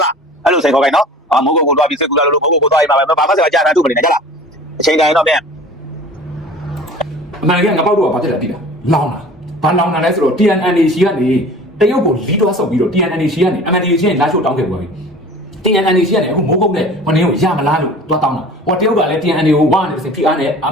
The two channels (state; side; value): normal; both; correlation 0.43